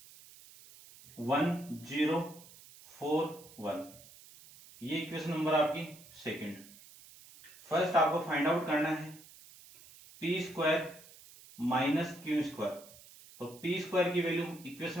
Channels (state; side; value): noise; right; hiss, 21 dB below the sound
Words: 1 0 4 1। ये इक्वेशन नंबर आपकी सेकंड। फर्स्ट आपको फाइंड आउट करना है p² - q², तो p² की वैल्यू